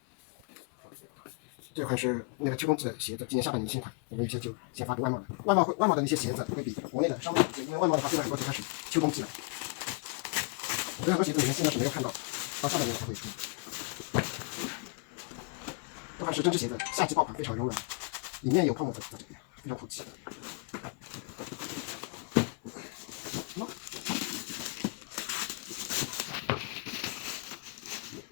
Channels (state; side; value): quieter; right; 32.6 dB